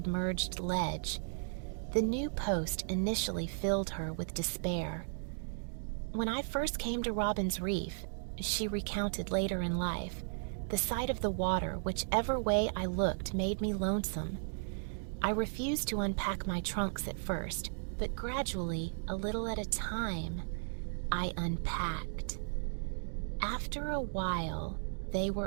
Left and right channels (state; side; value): silent; left; digital silence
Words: ledge. The new post initially filled her with despair. When I first came to Robin's Reef, she recounted later in life, the sight of the water, whichever way I looked, made me lonesome. I refused to unpack my trunks at first, but gradually, a little at a time, I unpacked. After a while, they